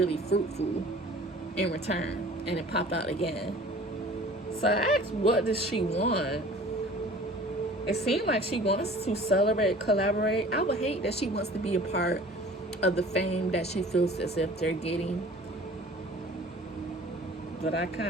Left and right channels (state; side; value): normal; both; correlation 0.46